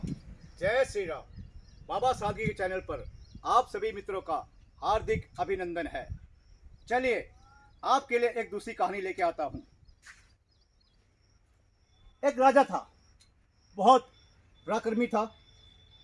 जय श्री राम। बाबा सादगी के चैनल पर आप सभी मित्रों का हार्दिक अभिनंदन है। चलिए आपके लिए एक दूसरी कहानी लेके आता हूँ। एक राजा था, बहुत पराक्रमी था,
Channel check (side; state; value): both; identical; correlation 1.00